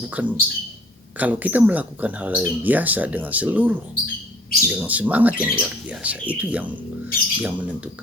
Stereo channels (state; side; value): normal; both; correlation 0.56